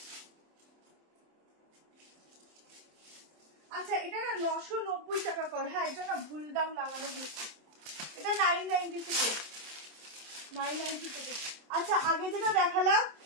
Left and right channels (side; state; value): left; late; 27 ms